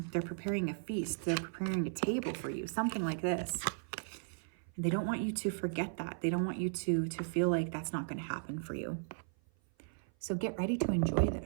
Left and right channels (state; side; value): silent; left; 54 dB below the other